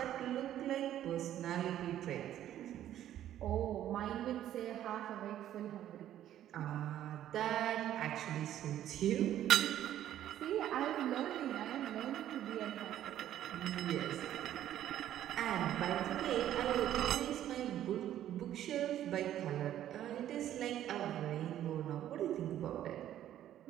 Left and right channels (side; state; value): left; quieter; 11.8 dB